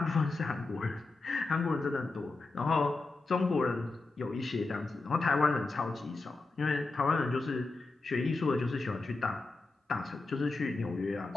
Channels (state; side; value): quieter; right; 3.5 dB